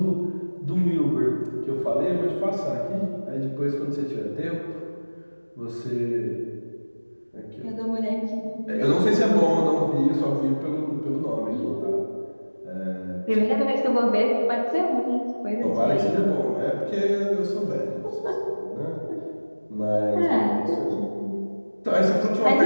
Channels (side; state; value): both; inverted; correlation -1.00